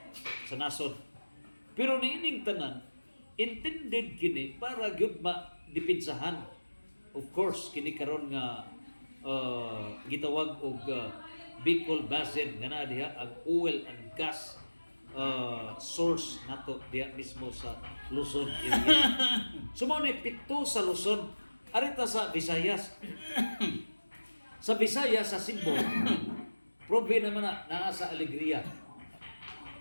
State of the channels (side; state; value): both; inverted; correlation -1.00